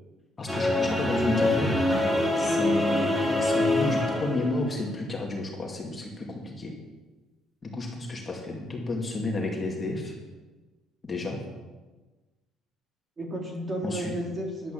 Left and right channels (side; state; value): both; normal; correlation 0.79